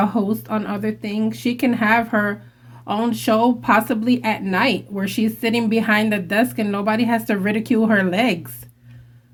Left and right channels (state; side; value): identical; both; correlation 1.00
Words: host on other things. She can have her own show, possibly at night, where she's sitting behind the desk and nobody has to ridicule her legs.